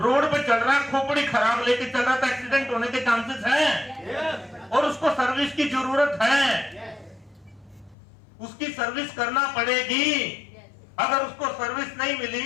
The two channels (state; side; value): drops out; right; at 8.0 s